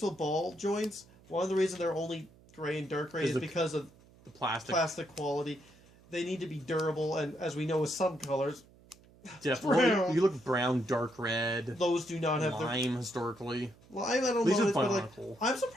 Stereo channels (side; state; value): right; noise; hum, 26 dB below the sound